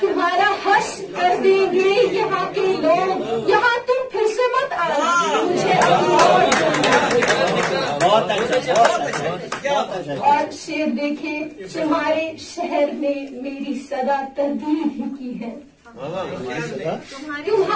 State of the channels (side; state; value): both; identical; correlation 1.00